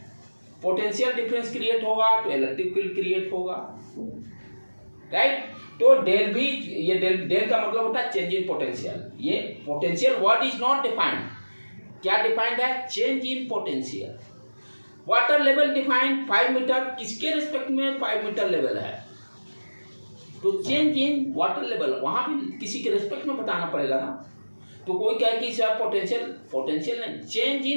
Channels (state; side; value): inverted; both; correlation -1.00